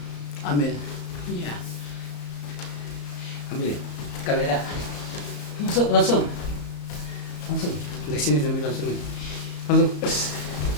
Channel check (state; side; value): late; right; 34 ms